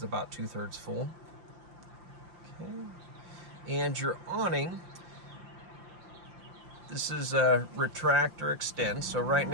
about 2/3 full. Okay. And your awning, this is a retract or extend. So right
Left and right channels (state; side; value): late; left; 5.8 ms